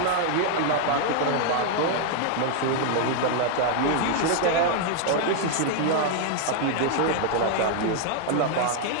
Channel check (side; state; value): both; different; correlation 0.00